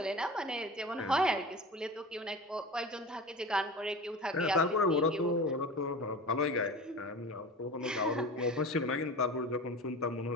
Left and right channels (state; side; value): normal; both; correlation 0.33